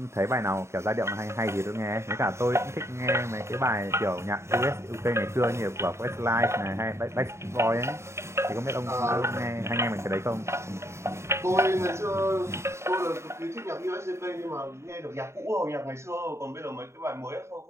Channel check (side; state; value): left; late; 0.13 ms